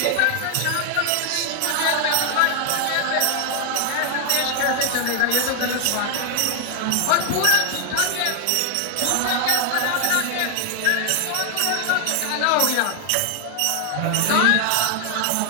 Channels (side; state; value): both; different; correlation 0.00